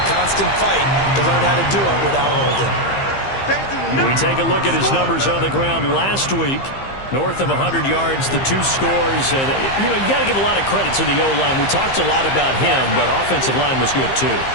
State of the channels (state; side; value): late; right; 15 ms